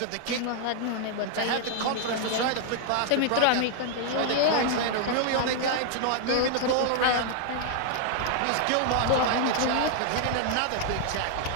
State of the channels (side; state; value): both; different; correlation 0.00